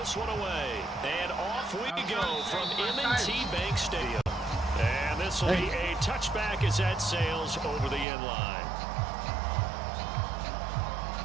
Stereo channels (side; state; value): left; drops out; at 8.1 s